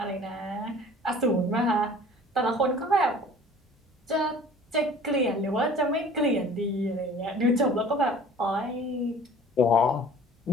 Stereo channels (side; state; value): both; normal; correlation 0.47